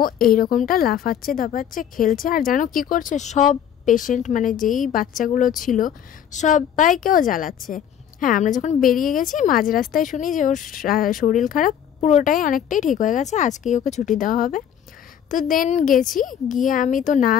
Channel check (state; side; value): quieter; right; 9.3 dB